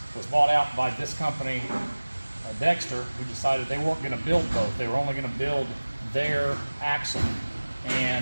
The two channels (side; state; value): both; inverted; correlation -1.00